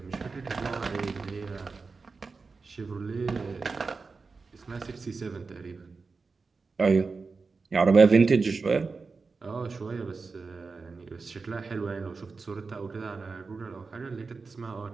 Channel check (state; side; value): quieter; left; 4.4 dB